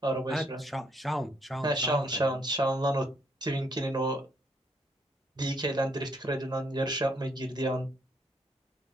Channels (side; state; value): both; normal; correlation 0.70